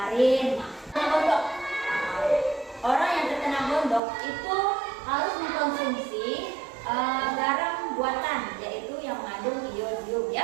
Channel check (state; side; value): drops out; left; at 4.0 s